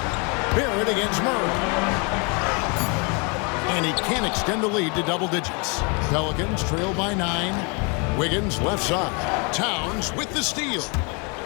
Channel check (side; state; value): right; quieter; 32.7 dB